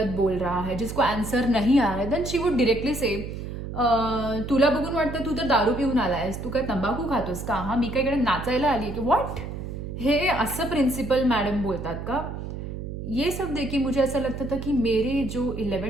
बोल रहा है जिसको आंसर नहीं आ रहा है, देन शी वुड डिरेक्टली से तुला बघून वाटतं तू तर दारू पिऊन आलायस, तू काय तंबाखू खातोस का, हा मी काय इकडे नाचायला आली की व्हॉट, हे असं प्रिन्सिपल मॅडम बोलतात का. ये सब देखिए मुझे ऐसा लगता था कि मेरे जो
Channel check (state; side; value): noise; right; hum, 7 dB below the sound